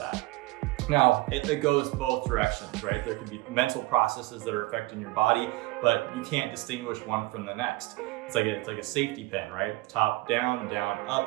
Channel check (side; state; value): left; quieter; 20.5 dB